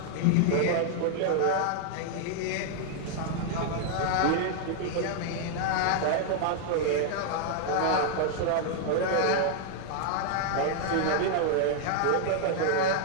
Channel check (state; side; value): different; both; correlation 0.00